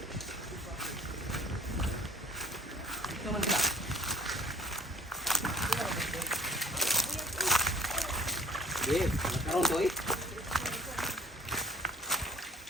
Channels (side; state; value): both; normal; correlation 0.54